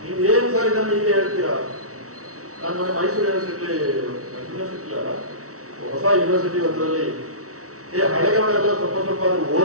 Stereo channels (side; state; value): left; late; 0.65 ms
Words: ನೀವು ಏನ್ ಸರ್ ಇದನ್ನು ಹೀಗೆ ಹೇಳ್ತೀರಾ? ನಾನು ಮೊನ್ನೆ ಮೈಸೂರು ಯೂನಿವರ್ಸಿಟಿ ಅಲ್ಲ, ಹೊಸ ಯೂನಿವರ್ಸಿಟಿ ಒಂದರಲ್ಲಿ ಹಳೆಗಳೆಲ್ಲ ಸ್ವಲ್ಪ ಅದನ್ನು